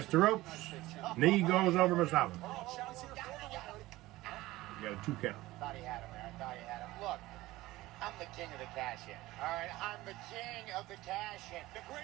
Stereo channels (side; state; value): left; quieter; 18.0 dB